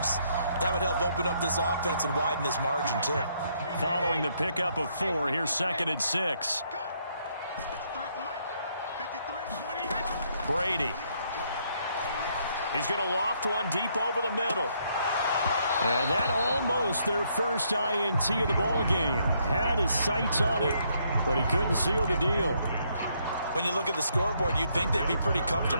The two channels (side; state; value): both; inverted; correlation -0.72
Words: that would help open up this offense and widen this margin, too. Following the pickup of 4, here's 2nd and 6. Brady. He's going to loft one deep over the middle. And that almost their first INT of the ball game. Had his sights on it, but he couldn't seal the deal. When you look at the scoreboard, you'd think they'd be pretty